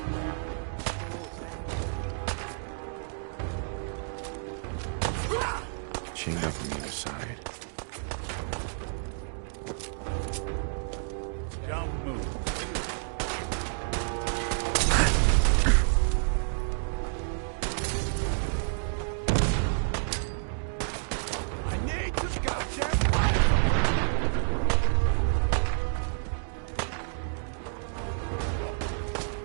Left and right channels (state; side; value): silent; left; digital silence